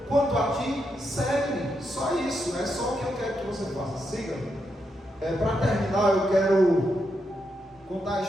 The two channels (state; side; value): normal; both; correlation 0.82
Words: Quanto a ti, segue-me. Só isso, é só o que eu quero que você faça. Siga-me. Para terminar, eu quero contar a